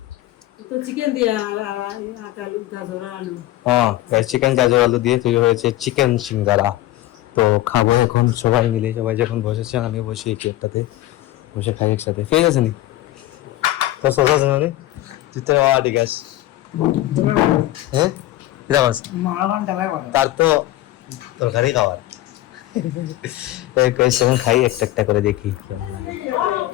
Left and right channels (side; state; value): right; quieter; 15.4 dB